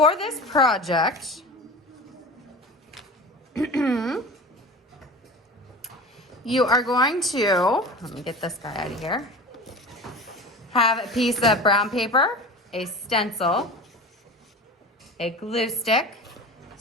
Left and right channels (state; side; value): normal; both; correlation 0.34